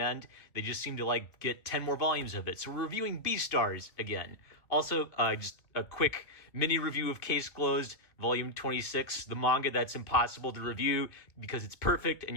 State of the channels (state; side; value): late; right; 2.3 ms